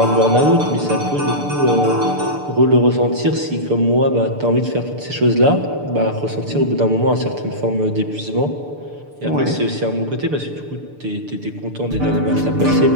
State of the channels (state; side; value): late; left; 6.8 ms